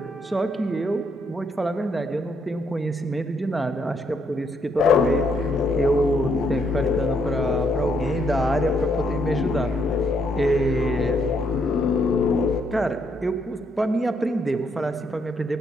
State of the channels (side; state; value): both; normal; correlation 0.74